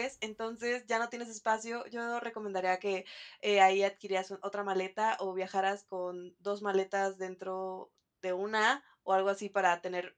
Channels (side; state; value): both; identical; correlation 1.00